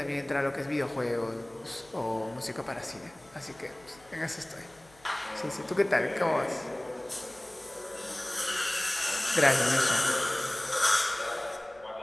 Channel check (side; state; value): left; noise; hum, 28 dB below the sound